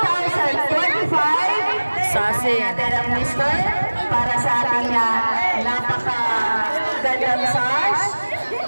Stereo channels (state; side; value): inverted; both; correlation -1.00